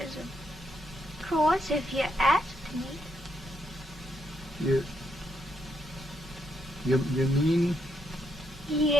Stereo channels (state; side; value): normal; both; correlation 0.78